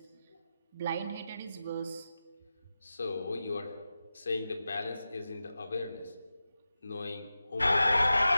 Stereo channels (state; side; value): inverted; both; correlation -0.93